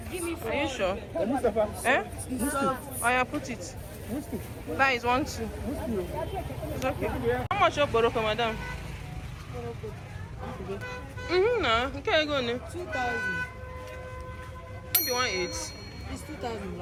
Are you sure? Eh? Oh yeah, put it. That is 1, 2. It's okay. How much your boroko, madam? No. Okay, go on. 2,000. Maybe 1.8. It's 2,000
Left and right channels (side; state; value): both; identical; correlation 1.00